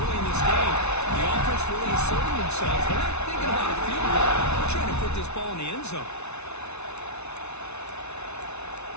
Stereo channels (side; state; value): right; late; 0.81 ms